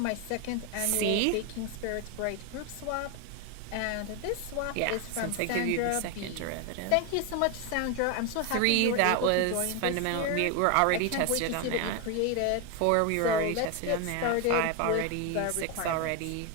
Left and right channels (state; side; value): different; both; correlation 0.01